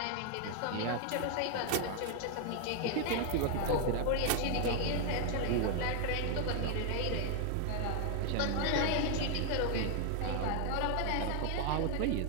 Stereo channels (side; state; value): both; different; correlation 0.00